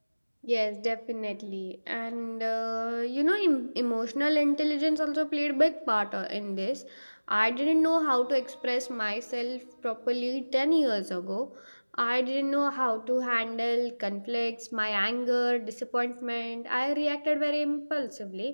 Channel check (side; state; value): both; inverted; correlation -1.00